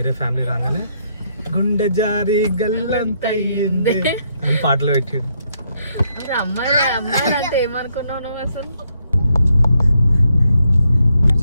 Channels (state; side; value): inverted; both; correlation -0.75